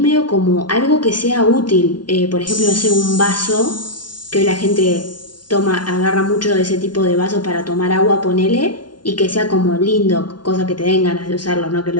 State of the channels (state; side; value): late; right; 0.70 ms